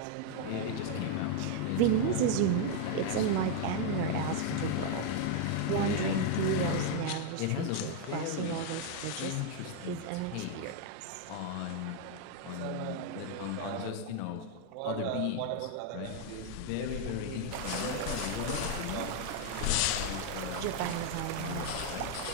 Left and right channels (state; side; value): different; both; correlation 0.00